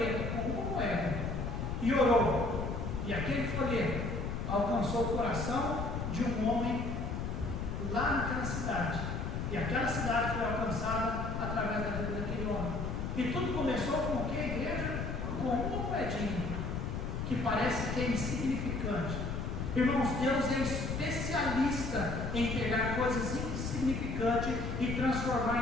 com uma moeda e orou, e aquele folheto alcançou o coração de um homem lá naquela cidade, e aquela cidade foi alcançada através da vida daquele homem. E tudo começou com o que, igreja? Com uma moedinha que parece que é insignificante. Irmãos, Deus é especialista em pegar coisas insignificantes e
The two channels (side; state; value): left; noise; rumble, 3 dB below the sound